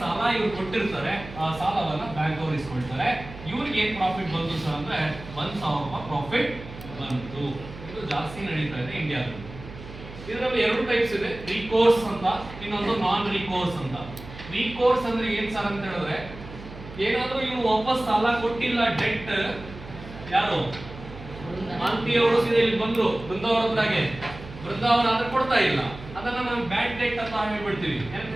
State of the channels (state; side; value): noise; right; hum, 14 dB below the sound